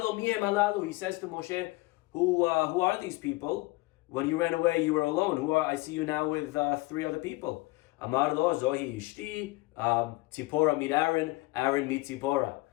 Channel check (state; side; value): quieter; right; 22.2 dB